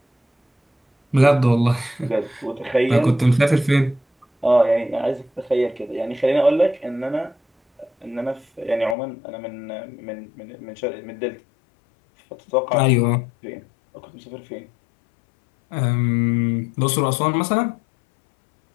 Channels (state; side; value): drops out; right; at 9.0 s